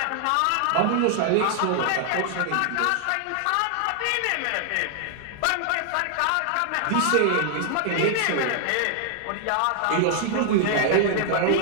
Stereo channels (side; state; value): both; different; correlation 0.00